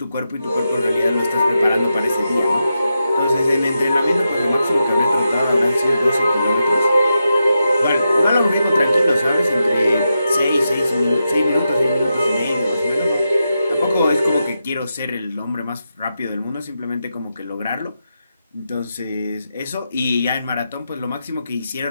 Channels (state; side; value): inverted; both; correlation -0.87